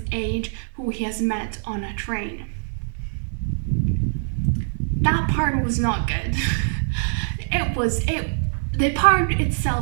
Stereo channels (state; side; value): silent; left; digital silence